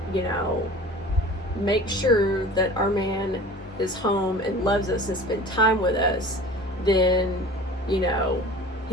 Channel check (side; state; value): both; normal; correlation 0.41